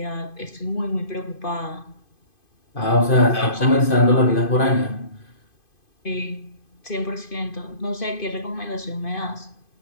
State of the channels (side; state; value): right; late; 2.5 ms